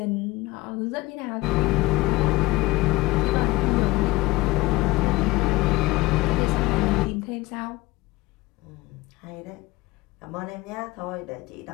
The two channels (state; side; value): quieter; right; 20.2 dB